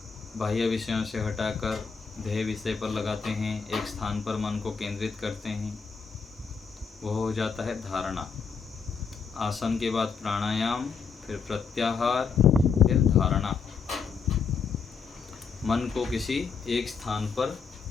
बाह्य विषयों से हटाकर ध्येय विषय पर लगाते हैं, एक स्थान पर मन को केंद्रित करते हैं, वह हो जाता है धारणा। आसन के बाद प्राणायाम, फिर प्रत्याहार, फिर धारणा। मन को किसी एक स्थान पर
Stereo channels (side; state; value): right; quieter; 5.7 dB